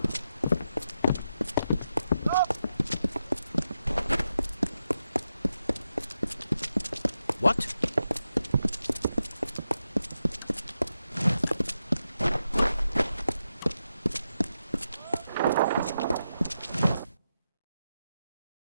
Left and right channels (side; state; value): both; inverted; correlation -0.87